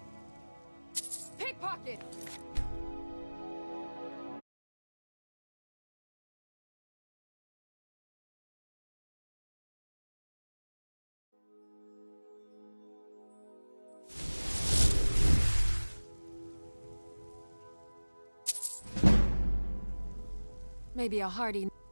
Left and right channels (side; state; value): both; inverted; correlation -1.00